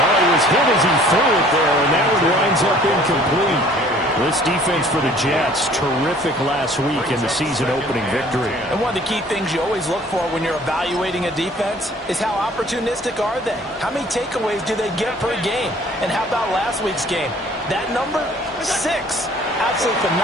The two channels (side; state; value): both; normal; correlation 0.54